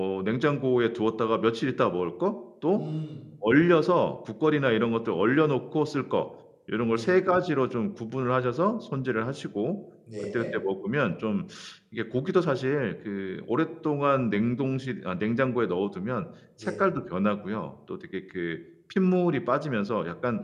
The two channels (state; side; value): identical; both; correlation 1.00